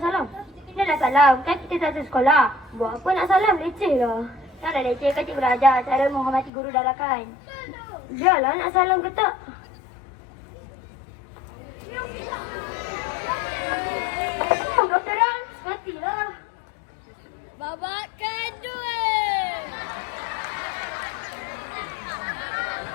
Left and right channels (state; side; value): drops out; right; at 6.5 s